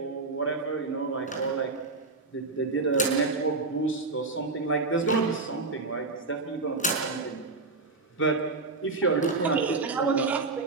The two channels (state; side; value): quieter; left; 3.7 dB